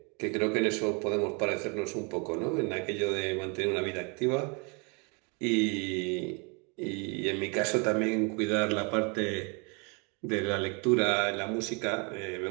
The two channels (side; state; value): left; quieter; 33.3 dB